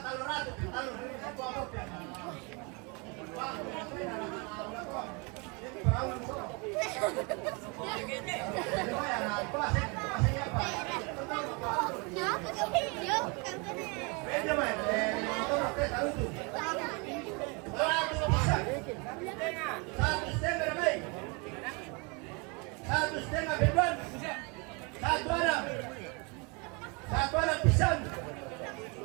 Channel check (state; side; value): quieter; left; 30.8 dB